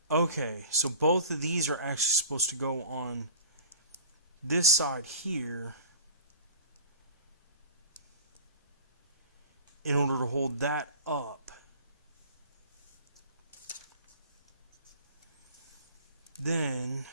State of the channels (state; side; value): inverted; both; correlation -0.43